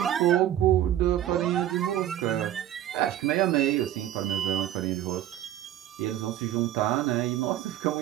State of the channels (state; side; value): quieter; left; 12.2 dB